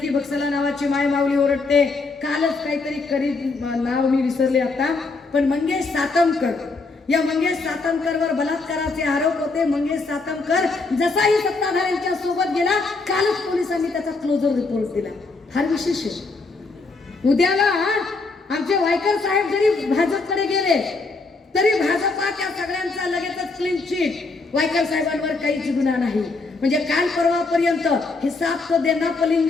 बक्सला नावाची माय माऊली ओरडते. कालच काहीतरी कधी नाव मी विसरले आता, पण मंगेश सातमकर, या मंगेश सातमकरवर बलात्काराचे आरोप होते. मंगेश सातमकर जसाही सत्ताधाऱ्यांच्या सोबत गेला कालच पोलिसांनी त्याचा क्लोजर रिपोर्ट दिला. फार विशेष आहे. उद्याला आमचे वायकर साहेब जरी भाजपकडे गेले तरी भाजपा त्या सगळ्यांचा लगेचच क्लीन चिट. वायकर साहेबांवर काहीच गुन्हा नाही. म्हणजे काल परवापर्यंत हिसाब तो देना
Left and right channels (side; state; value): right; quieter; 3.8 dB